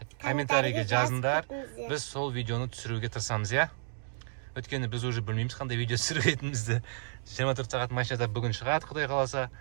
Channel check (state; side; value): silent; left; digital silence